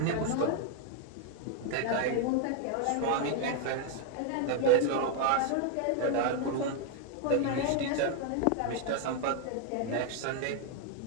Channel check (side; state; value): both; different; correlation 0.00